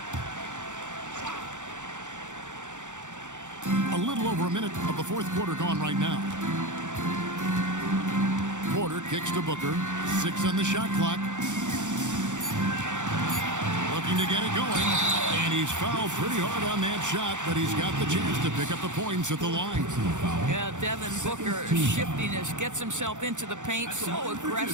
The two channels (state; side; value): late; left; 0.85 ms